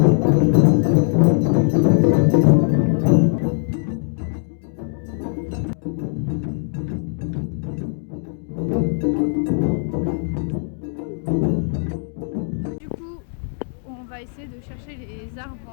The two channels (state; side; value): silent; right; 65 dB below the other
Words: Du coup, on va essayer de chercher les arbres